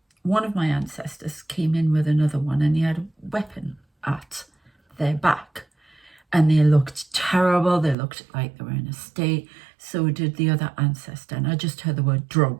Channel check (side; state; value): left; drops out; at 8.0 s